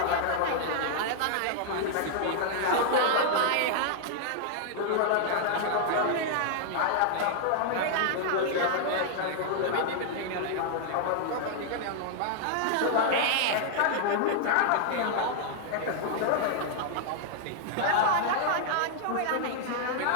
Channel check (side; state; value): both; different; correlation -0.01